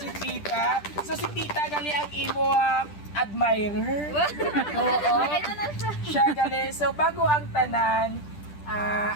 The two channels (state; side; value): late; right; 10 ms